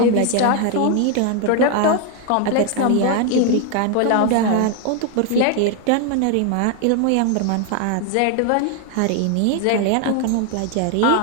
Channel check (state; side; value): different; both; correlation 0.01